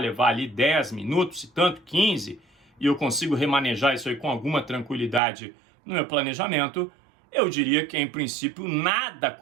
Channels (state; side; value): drops out; left; at 5.2 s